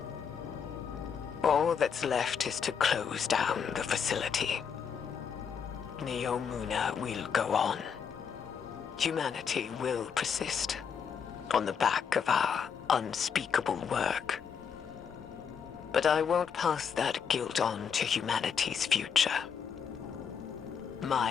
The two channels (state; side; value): quieter; right; 7.0 dB